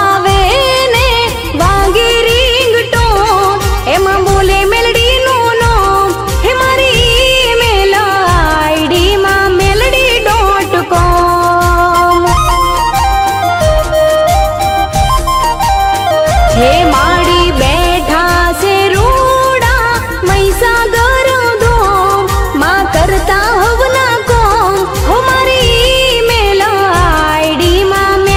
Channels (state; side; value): identical; both; correlation 1.00